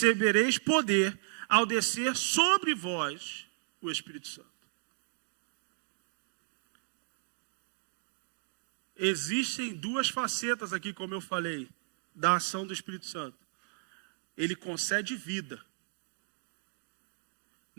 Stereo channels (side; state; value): left; silent; digital silence